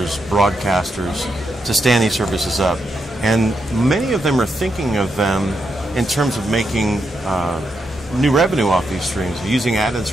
broadcasters to stand these services up. And many of them are thinking of them in terms of making new revenue off these streams, using ad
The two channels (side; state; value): both; normal; correlation 0.82